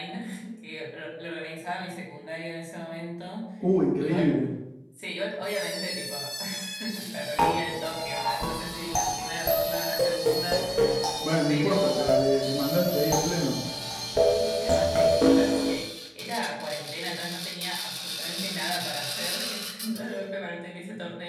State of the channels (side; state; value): both; identical; correlation 1.00